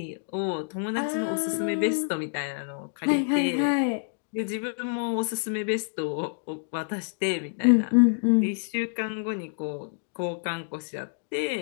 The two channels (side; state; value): right; silent; digital silence